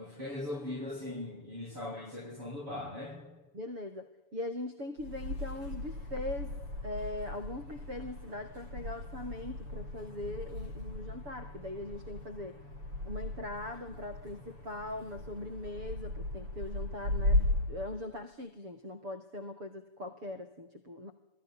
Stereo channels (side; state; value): left; late; 7.0 ms